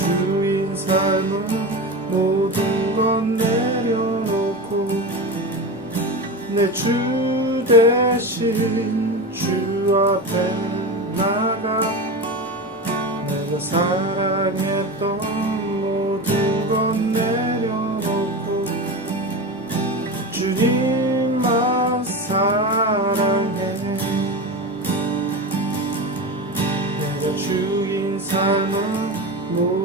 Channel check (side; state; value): both; normal; correlation 0.24